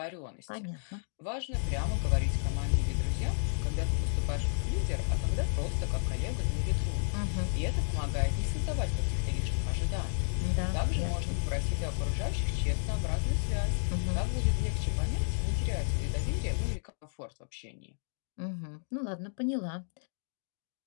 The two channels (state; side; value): silent; right; digital silence